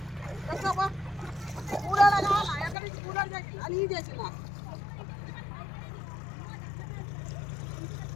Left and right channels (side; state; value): right; drops out; at 2.8 s